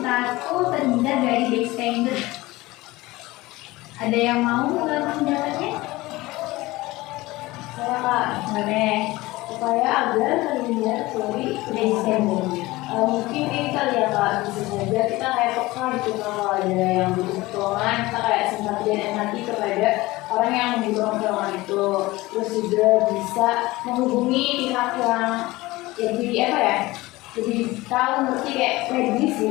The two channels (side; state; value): right; quieter; 19.8 dB